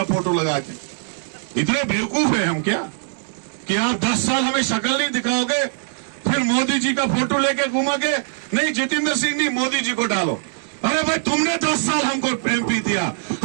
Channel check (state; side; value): silent; left; digital silence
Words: फोटो लगा के। इतने बेवकूफ है हम क्या कि आप 10 साल हमें शक्ल नहीं दिखाओगे, फिर मोदी जी का फोटो लेके घूमोगे, नहीं जितेंद्र सिंह नहीं, मोदी जी को डालो। अरे भाई तुमने 10 साल हमको एमपी दिया,